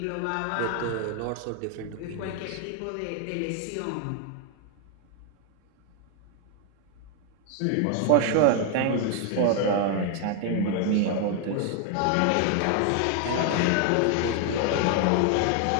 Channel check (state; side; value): different; both; correlation 0.00